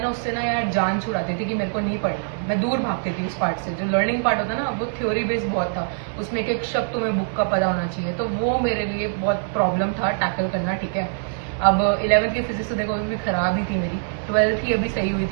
ना उससे ना यार जान छुड़ाती थी कि मेरे को नहीं पढ़ना, मैं दूर भागती थी उस पार्ट से। जो लर्निंग पार्ट होता ना वो थ्योरी बेस्ड बहुत था, उसमें एक एक शब्द तुम्हें बुक का पता होना चाहिए, तो वो मेरे लिए बहुत प्रॉब्लम था टैकल करना, ठीक है। अब 11th की फिजिक्स तो देखो अभी भी खराब ही थी मेरी, 12th ही अभी सही हुई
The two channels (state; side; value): silent; left; digital silence